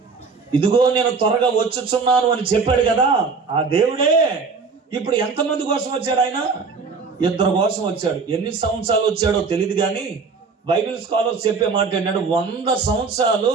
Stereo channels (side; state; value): left; quieter; 4.8 dB